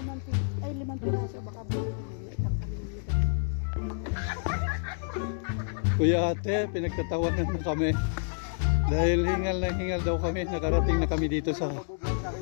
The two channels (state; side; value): silent; right; digital silence